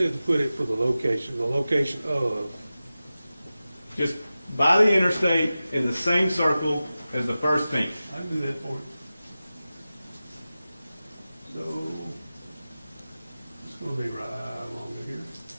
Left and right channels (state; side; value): inverted; both; correlation -0.95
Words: to put it for the location of, Just by the interstate in the same circle as the first ping. I can do that for you. So, it's going to be right along here.